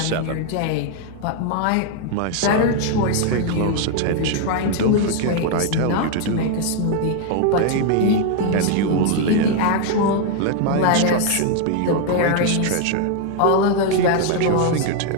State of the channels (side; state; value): both; different; correlation 0.00